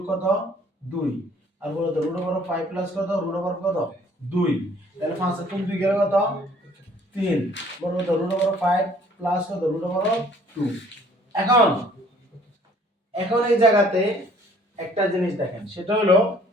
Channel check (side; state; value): both; normal; correlation 0.57